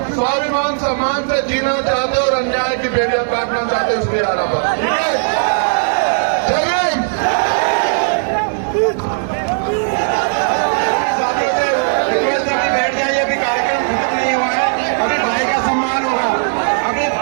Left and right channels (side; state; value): left; silent; digital silence